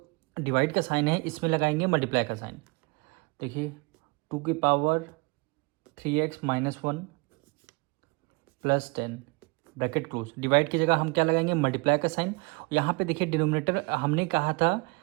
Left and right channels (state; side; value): quieter; left; 28.6 dB